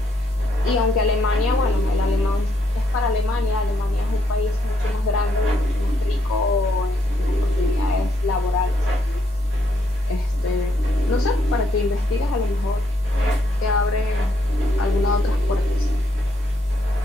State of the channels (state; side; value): normal; both; correlation 0.75